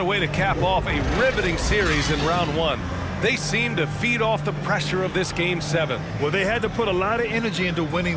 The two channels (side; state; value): both; identical; correlation 1.00